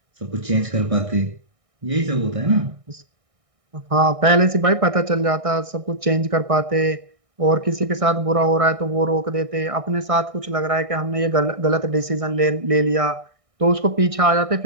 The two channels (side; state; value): left; late; 1.6 ms